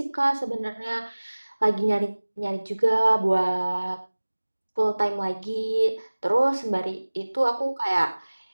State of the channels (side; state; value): both; inverted; correlation -1.00